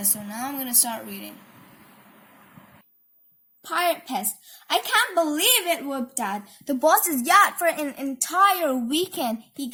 So now I'm going to start reading. Pirate Pest. I can't believe it, whooped Dad. The boss's yacht for an entire weekend. He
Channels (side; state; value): both; identical; correlation 1.00